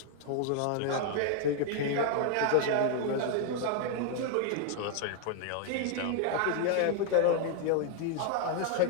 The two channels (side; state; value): both; different; correlation 0.00